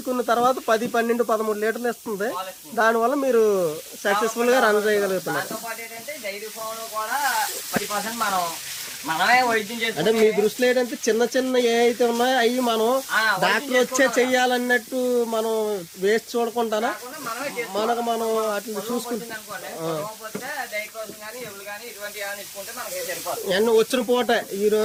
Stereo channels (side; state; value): both; identical; correlation 1.00